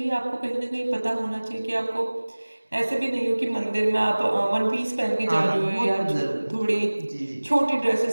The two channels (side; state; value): both; inverted; correlation -1.00